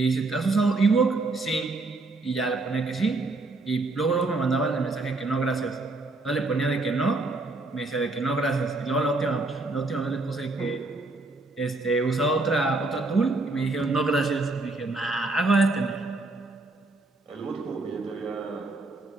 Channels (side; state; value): left; quieter; 3.3 dB